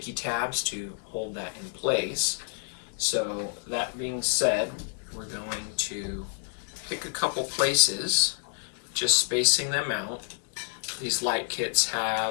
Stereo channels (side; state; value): right; silent; digital silence